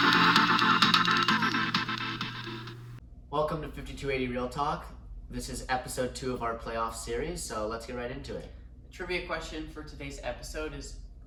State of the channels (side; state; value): both; identical; correlation 1.00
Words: Welcome to 5280 Real Talk. This is episode 2 of our playoff series, so let's get right into it. Trivia question for today's episode is,